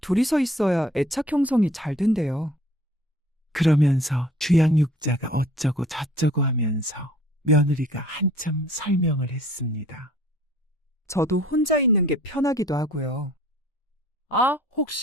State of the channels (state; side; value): normal; both; correlation 0.54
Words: 둘이서 있어야 애착 형성이 잘 된대요. 그러면서 주양육자가 어쩌고 저쩌고 하면서 며느리가 한참 설명을 했습니다. 저도 혼자 있는 게 편하기도 하고요. 아,